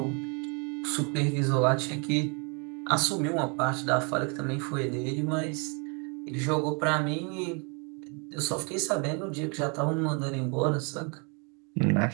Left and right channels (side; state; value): left; quieter; 34.4 dB